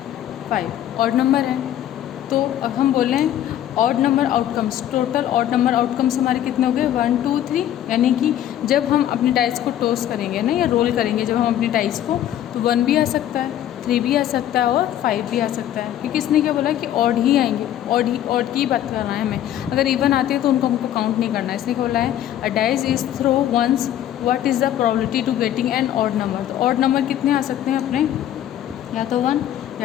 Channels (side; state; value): right; quieter; 11.6 dB